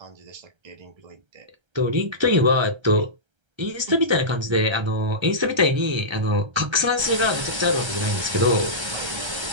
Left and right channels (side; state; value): left; late; 1.3 ms